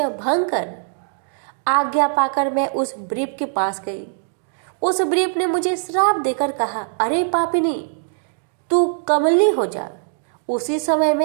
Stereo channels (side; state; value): left; silent; digital silence